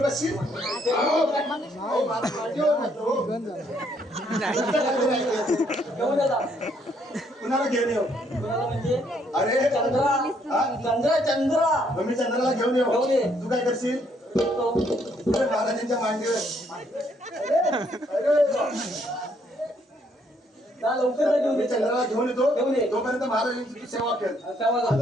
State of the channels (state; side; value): normal; both; correlation 0.69